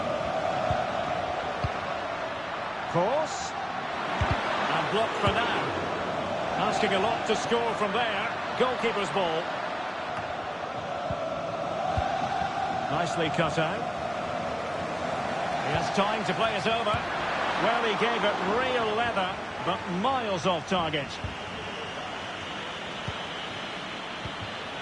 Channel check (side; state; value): both; identical; correlation 1.00